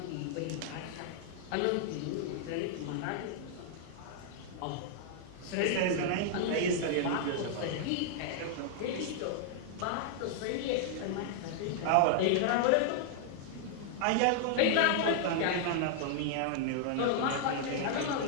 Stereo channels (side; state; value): both; different; correlation -0.01